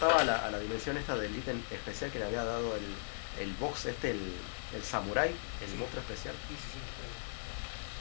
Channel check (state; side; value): silent; right; 53 dB below the other